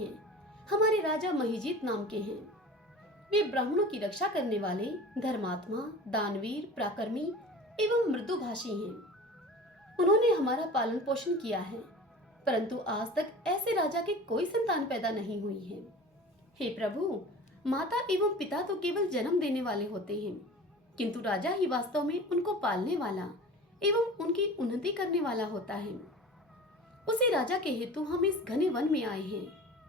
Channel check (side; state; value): both; normal; correlation 0.38